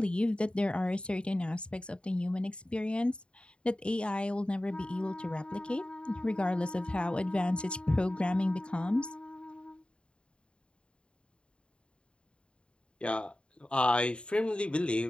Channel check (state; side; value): late; right; 0.054 ms